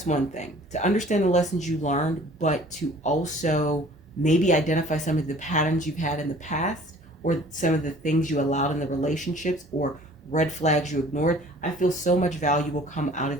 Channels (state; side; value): normal; both; correlation 0.50